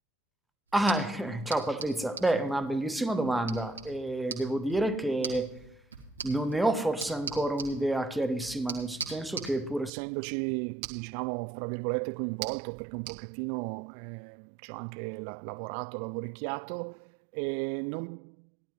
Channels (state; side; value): drops out; left; at 9.9 s